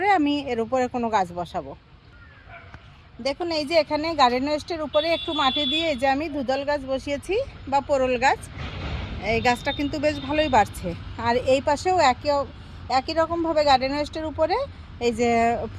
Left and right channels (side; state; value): both; identical; correlation 1.00